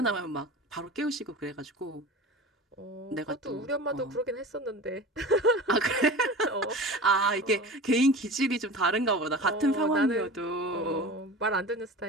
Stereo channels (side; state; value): both; normal; correlation 0.34